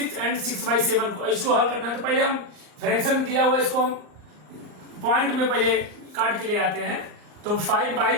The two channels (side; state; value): left; late; 38 ms